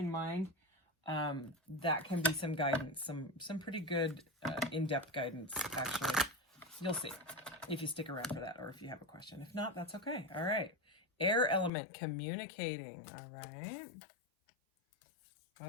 mind, that can be some guidance, some pretty good in-depth guidance, actually. You'll see if you stick around for that or if you have a question. If not, that's okay. All right. Air element, communicating. All right.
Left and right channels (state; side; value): drops out; right; at 11.7 s